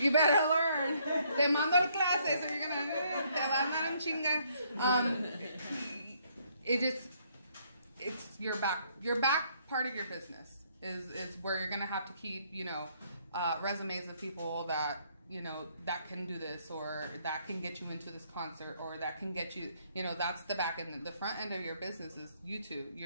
better learn. Te mando el clase, so you're gonna te van a dar un chinga. It's your back part of your business is where you're gonna have to keep resumes of people that that can do this, or that can get you into this concert, or that can get you, that's the back end. The front end of your business is you two.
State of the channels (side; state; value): both; inverted; correlation -0.68